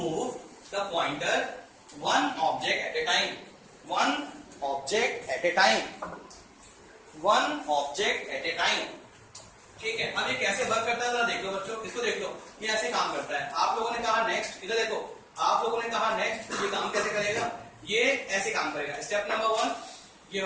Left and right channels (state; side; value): identical; both; correlation 1.00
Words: the pointer one object at a time. One object at a time. One object at a time. ठीक है. अब ये कैसे work करता है जरा देख लो बच्चों. इसको देख लो. ये ऐसे काम करता है. आप लोगों ने कहा नेक्स्ट. इधर देखो. आप लोगों ने कहा नेक्स्ट. ये काम कैसे करेगा. ये ऐसे काम करेगा. स्टेप नंबर 1 ये